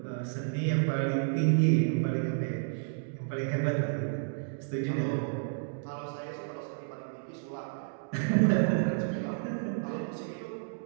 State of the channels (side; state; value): left; silent; digital silence